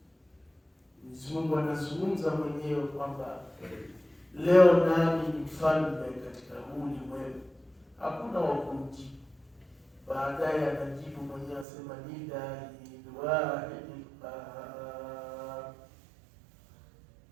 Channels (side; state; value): left; drops out; at 11.7 s